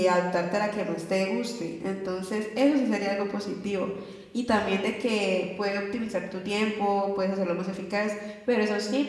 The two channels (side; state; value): both; identical; correlation 1.00